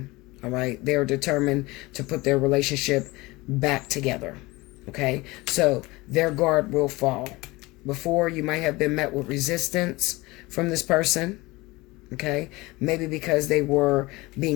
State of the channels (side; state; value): right; quieter; 22.0 dB